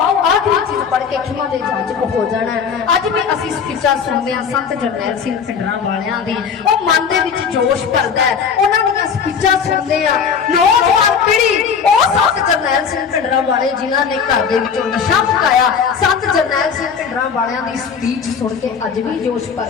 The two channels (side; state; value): right; quieter; 6.6 dB